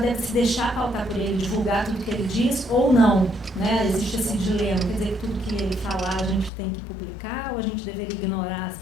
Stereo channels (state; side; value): drops out; right; at 6.5 s